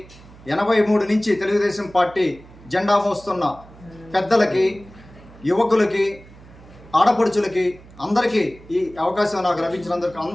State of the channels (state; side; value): noise; right; hum, 22 dB below the sound